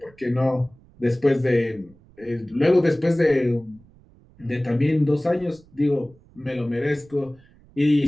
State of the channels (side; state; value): right; noise; rumble, 28 dB below the sound